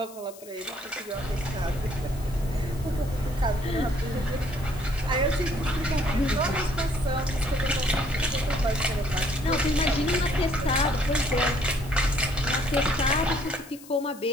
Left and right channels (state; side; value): noise; left; hiss, 20 dB below the sound